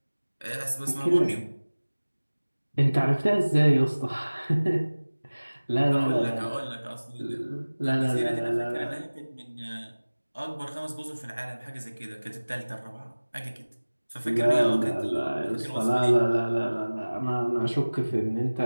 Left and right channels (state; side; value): inverted; both; correlation -1.00